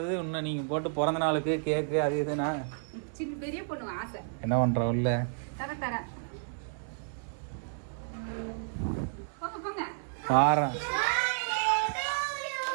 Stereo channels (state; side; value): silent; left; digital silence